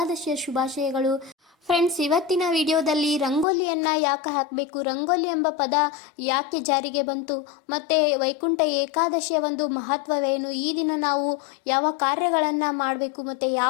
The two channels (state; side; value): drops out; right; at 3.5 s